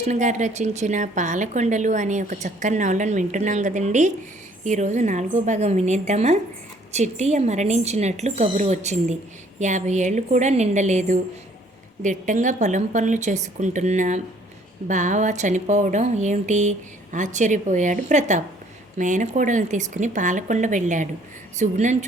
గారు రచించిన పాలకొండలు అనే ఒక చక్కని నవలను వింటున్నాం కదండి. ఈరోజు 4వ భాగం వినేద్దామా? చిట్టియ మరణించినట్లు కబురు వచ్చింది. 50 ఏళ్ళు కూడా నిండలేదు. దిట్టంగా పొలం పనులు చేసుకుంటున్న బావ చనిపోవడం ఏమిటి? ఆశ్చర్యపోయాడు ప్రతాప్. మేనకోడలను తీసుకుని పాలకొండ వెళ్ళాడు. సుగుణను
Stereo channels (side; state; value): both; normal; correlation 0.60